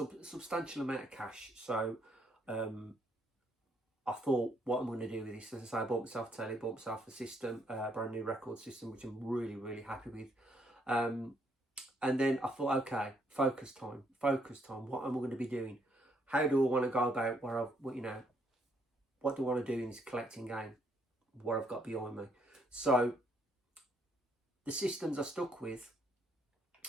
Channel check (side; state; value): both; normal; correlation 0.71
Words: amount of cash, so I thought, what I'm going to do with this, as I say, I bought myself a telly, bought myself a system, a brand new record system, which I'm really happy with. And then I thought, okay, focus time. What am I going to be doing? How do I want to go about what do I want to do in this collecting game? What I've got behind me. So the systems I stuck with